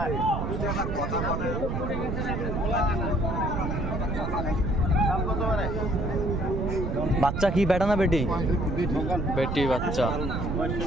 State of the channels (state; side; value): noise; right; rumble, 2 dB below the sound